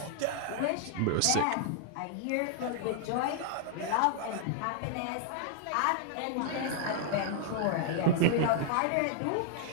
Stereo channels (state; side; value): different; both; correlation -0.01